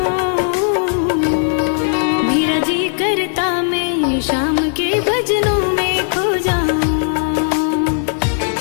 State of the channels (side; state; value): right; silent; digital silence